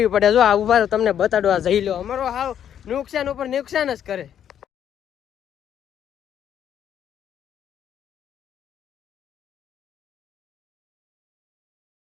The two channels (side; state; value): right; quieter; 9.6 dB